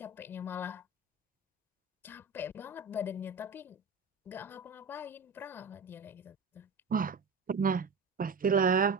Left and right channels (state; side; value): quieter; left; 4.1 dB